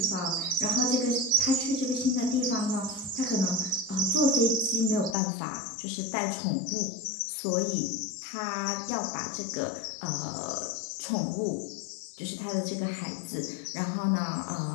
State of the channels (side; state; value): right; drops out; at 5.2 s